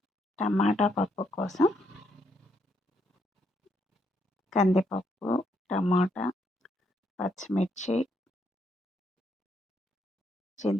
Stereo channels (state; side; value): normal; both; correlation 0.75